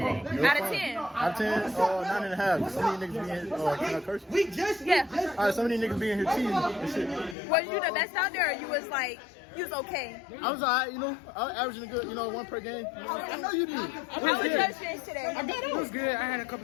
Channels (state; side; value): drops out; right; at 7.4 s